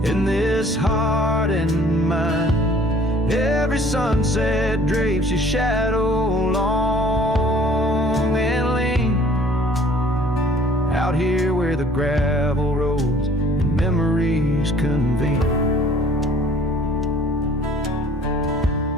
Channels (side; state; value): both; normal; correlation 0.54